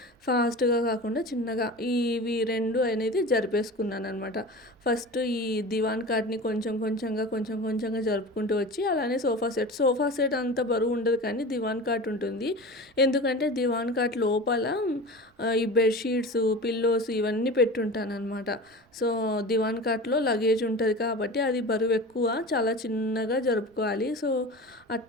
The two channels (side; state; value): both; normal; correlation 0.33